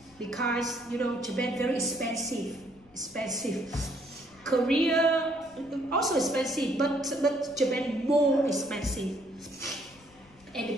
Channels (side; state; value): left; noise; rumble, 28 dB below the sound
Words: because, you know, Japan very expensive. Korea also expensive, but Japan more expensive. And